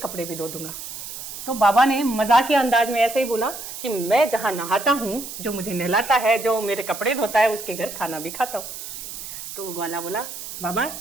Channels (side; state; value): right; noise; hiss, 10 dB below the sound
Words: भी धो दूंगा। तो बाबा ने मजाक के अंदाज में ऐसे ही बोला कि मैं जहाँ नहाता हूँ, जो मुझे नहलाता है, जो मेरे कपड़े धोता है, उसके घर खाना भी खाता हूँ। तो वो ग्वाला बोला, बाबा